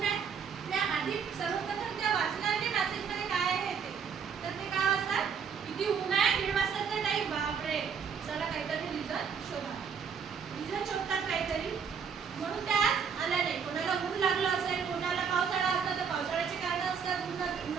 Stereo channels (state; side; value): quieter; left; 6.7 dB